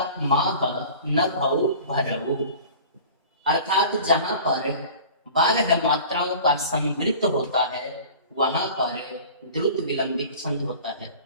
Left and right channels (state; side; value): inverted; both; correlation -0.41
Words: माह न भौ भरऊ, अर्थात जहां पर 12 मात्राओं का संवृत्त होता है वहां पर द्रुत विलंबित छंद होता है,